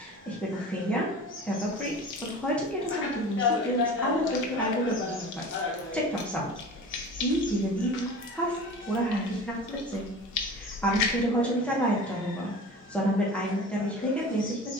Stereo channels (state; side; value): normal; both; correlation 0.37